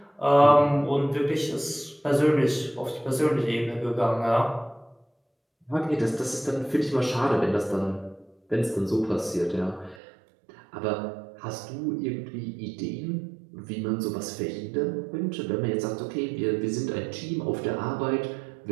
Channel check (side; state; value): left; drops out; at 10.0 s